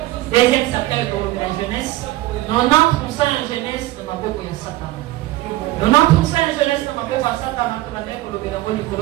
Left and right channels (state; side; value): quieter; left; 17.2 dB